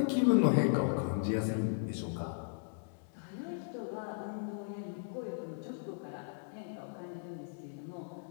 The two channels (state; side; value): silent; right; digital silence